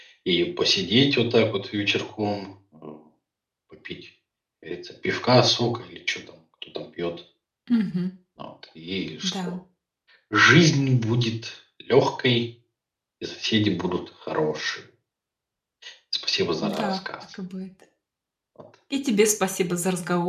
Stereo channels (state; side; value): identical; both; correlation 1.00